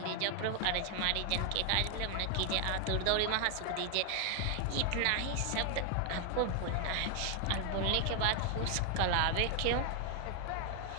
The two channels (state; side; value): different; both; correlation 0.00